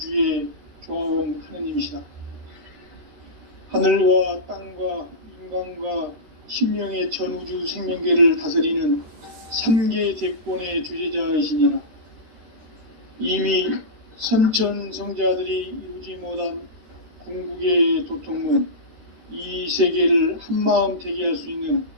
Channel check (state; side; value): late; left; 14 ms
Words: 조화원 하느님이시다. 하늘과 땅과 인간과 심령의 전우주 생명계를 다스리는 3계 대권의 주제자이시니라. 이미 선천성자들이 이루지 못한 궁극의 도통문, 이 세계를 한마음 되게 할 수 있는